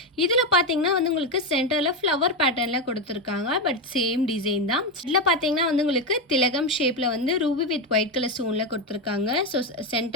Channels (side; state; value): both; normal; correlation 0.10